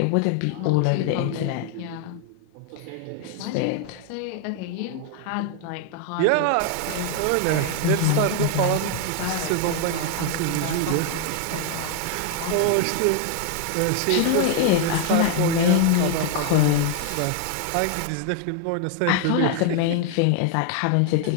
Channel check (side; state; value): both; different; correlation 0.00